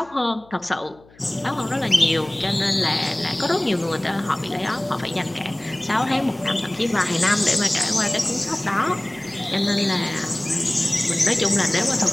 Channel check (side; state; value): left; noise; hum, 27 dB below the sound